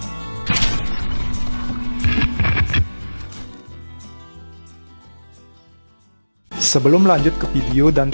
Sebelum lanjut ke video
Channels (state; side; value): inverted; both; correlation -1.00